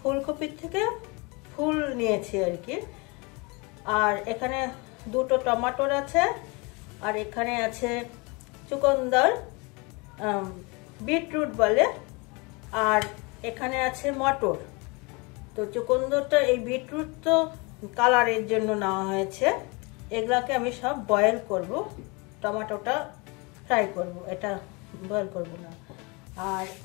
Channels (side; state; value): right; quieter; 28.5 dB